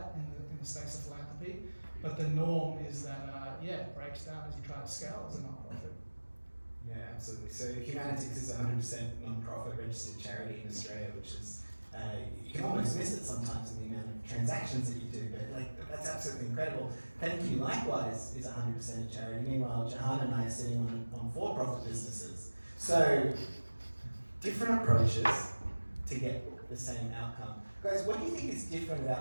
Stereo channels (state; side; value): inverted; both; correlation -1.00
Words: in the space of philanthropy, but the norm is that, it breaks down as you try to scale as a non-profit. Yeah, absolutely. So Humanitix is a 100% non-profit registered charity in Australia, which is, you can almost miss it sometimes in the amount of transactions that you do, but that's absolutely incredible. Thankyou likewise is 100% a charity. Meanwhile, Jahan and I are sitting on for-profit businesses. So different approaches to get the same outcome. Guys, what do you think is different